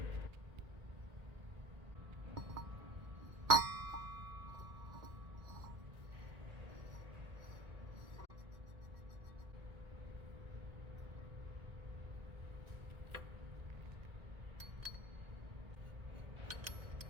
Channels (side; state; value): left; late; 1.9 ms